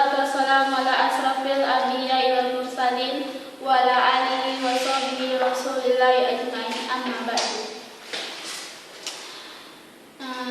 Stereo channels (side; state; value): both; identical; correlation 1.00